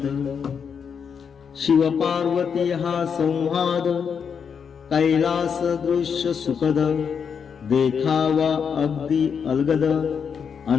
शिव पार्वती हा संवाद कैलास दृश्य सुखद. देखावा अगदी अलगद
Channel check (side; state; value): right; quieter; 6.8 dB